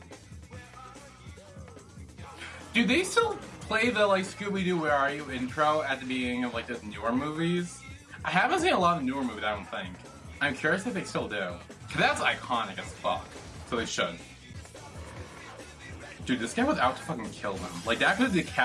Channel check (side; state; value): both; identical; correlation 1.00